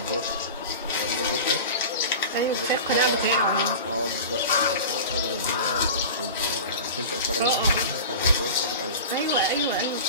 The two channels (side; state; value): both; inverted; correlation -0.33